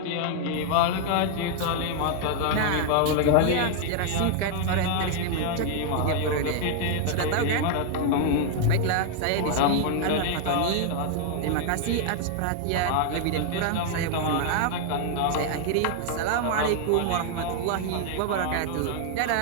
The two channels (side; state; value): both; different; correlation 0.00